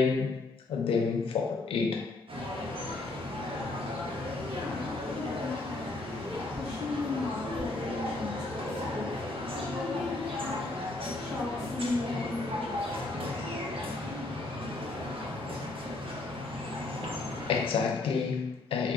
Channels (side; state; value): right; quieter; 3.1 dB